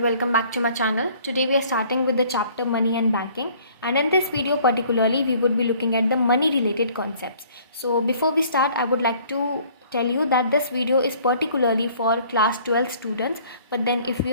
welcome back to my channel. Today we are starting with the chapter Money and Banking, and in this video particularly we would be looking at the money related concepts. So before we start, I would like to tell you that this video is particularly for class 12 students, but then if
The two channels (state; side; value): inverted; both; correlation -0.56